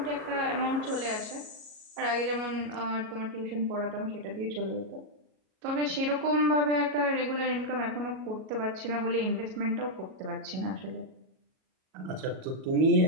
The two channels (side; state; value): left; late; 37 ms